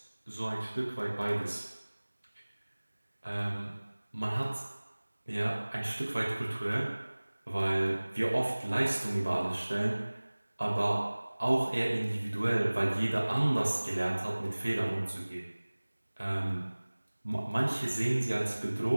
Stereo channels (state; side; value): inverted; both; correlation -1.00